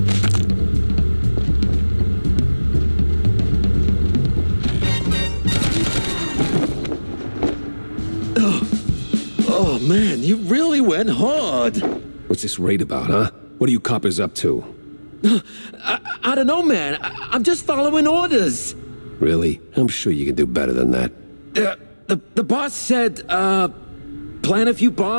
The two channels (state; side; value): inverted; both; correlation -1.00